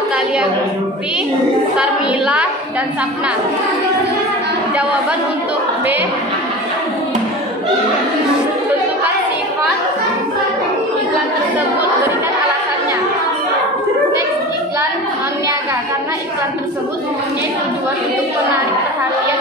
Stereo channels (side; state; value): both; normal; correlation 0.33